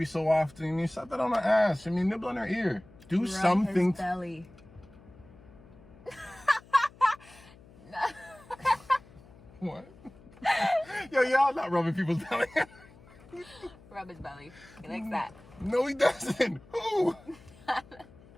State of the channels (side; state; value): left; noise; hum, 23 dB below the sound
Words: so often. Slap that on her ass. Nibble on her ear. Do Rub something. His belly. What? Yo, y'all not rubbing people's belly. Rub his belly. He likes that. No, he doesn't. Who?